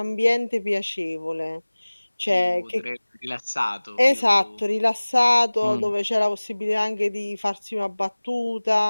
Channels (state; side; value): inverted; both; correlation -1.00